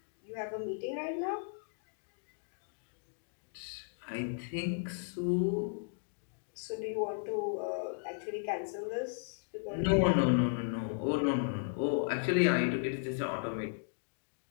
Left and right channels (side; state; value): right; silent; digital silence